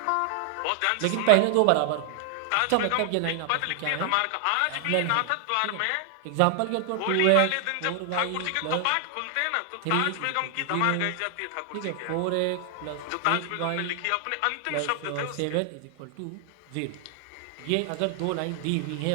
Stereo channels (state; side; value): different; both; correlation 0.00